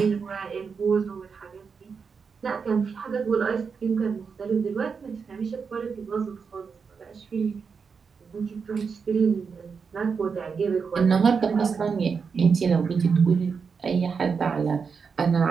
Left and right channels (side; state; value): left; quieter; 5.7 dB